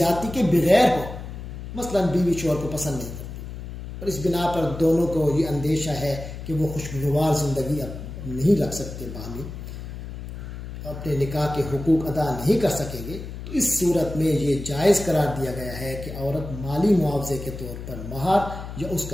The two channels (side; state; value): left; noise; hum, 10 dB below the sound